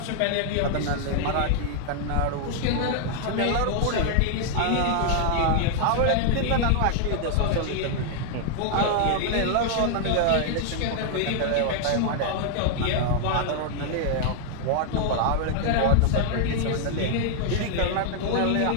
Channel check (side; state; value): both; different; correlation 0.00